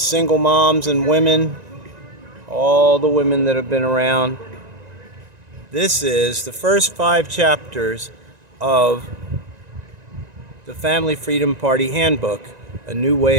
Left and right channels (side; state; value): left; late; 1.9 ms